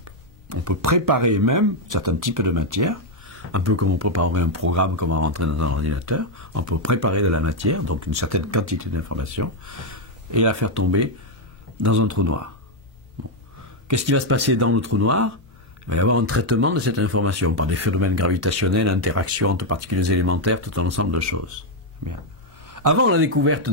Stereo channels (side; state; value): both; normal; correlation 0.01